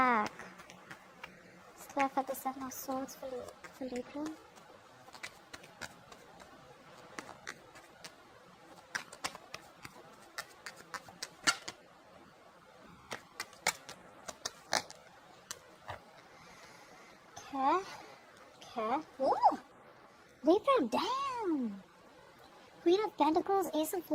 Let's clarify the Seven of Swords for Libra. Okay. Ooh! Libra, damn! Queen of Pentacles, Ace of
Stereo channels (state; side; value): identical; both; correlation 1.00